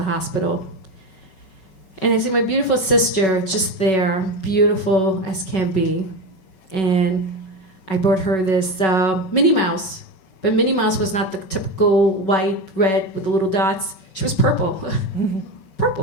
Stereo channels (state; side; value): late; right; 5.3 ms